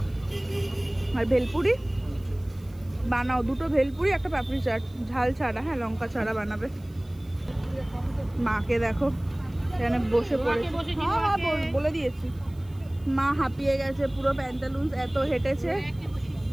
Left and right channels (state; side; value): noise; right; hiss, 30 dB below the sound